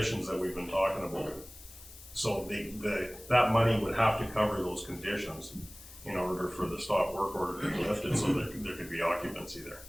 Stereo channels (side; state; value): left; noise; hiss, 18 dB below the sound